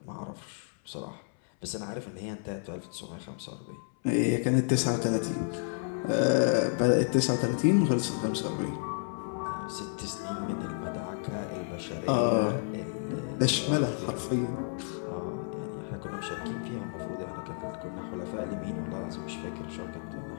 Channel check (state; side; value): silent; right; 57 dB below the other